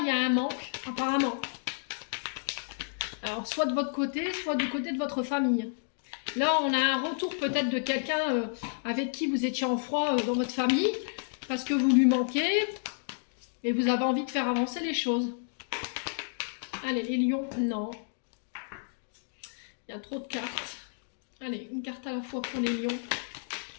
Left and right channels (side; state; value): right; silent; digital silence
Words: y a un manque, apparemment. Alors, soit de votre côté, soit du côté de votre famille. Là, on a un retour peut-être de quelqu'un avec qui vous étiez en froid dans votre famille, parce que vous lui manquez. Et vous avez envie de faire avancer les choses. Allez, les lions, non. Il y a trop de cartes. Allez, une carte à la fois pour les lions.